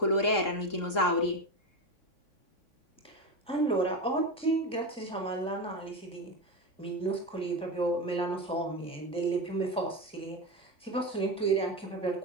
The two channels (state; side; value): late; right; 3.7 ms